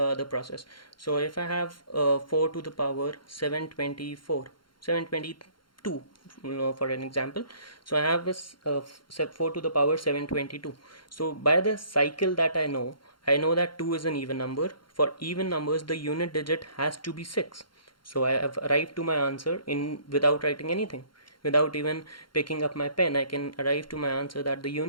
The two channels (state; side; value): late; right; 0.73 ms